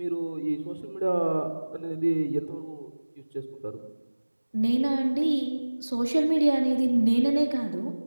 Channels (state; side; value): inverted; both; correlation -1.00